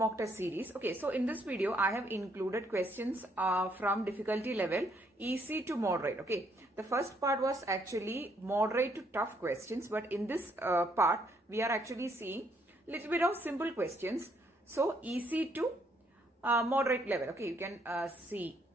test series. Okay, so in this video, I have included questions from difficulty level easy to moderate. Okay, the first part was actually moderate to tough questions, but in this part, we are actually seeing little bit of simple questions. So easy to moderate level. Okay, you can see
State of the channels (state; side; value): normal; both; correlation 0.70